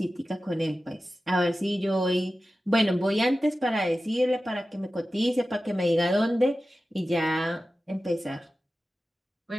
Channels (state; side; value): normal; both; correlation 0.95